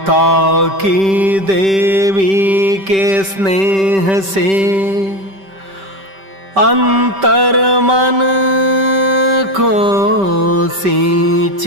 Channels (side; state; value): left; late; 5.2 ms